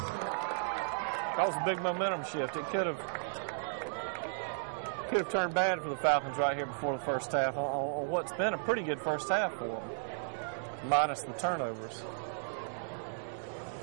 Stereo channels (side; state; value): left; silent; 55 dB below the other